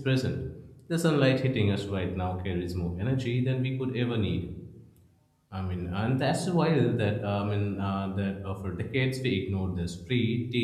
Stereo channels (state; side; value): identical; both; correlation 1.00